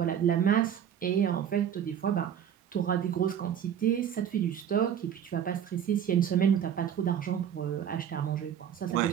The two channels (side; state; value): left; quieter; 9.0 dB